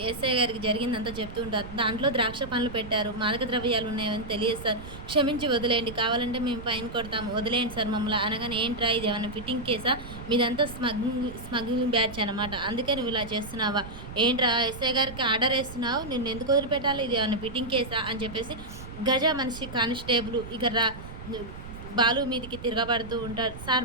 ఎస్ఐ గారికి జరిగిందంతా చెప్తూ ఉంటారు. దాంట్లో ద్రాక్ష పండ్లు పెట్టారు. మాదక ద్రవ్యాలు ఉన్నాయని తెలియదు సార్. క్షమించి వదిలేయండి. కావాలంటే మేము ఫైన్ కొడతాము. వదిలేయండి సార్ మమ్మల్ని అనగానే ఏంట్రా ఇదేమన్నా ఫిట్టింగ్ కేసా? మీదంతా స్మగ్లింగ్ బ్యాచ్ అనమాట. అందుకే నువ్వు ఇలా చేస్తున్నావా? ఏంట్రా ఎస్ఐ గారికి ఆర్డర్ ఏస్తున్నావు? నిన్నెందుకు వదిలిపెట్టాలి? ఇది ఏమన్నా ఫిట్టింగ్ కేసా? అని చెప్పేసి గజ మనిషి కానిస్టేబుల్ ఇక బాలు మీదికి తిరగబడుతూ ఉంటాడు. సార్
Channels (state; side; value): noise; right; rumble, 12 dB below the sound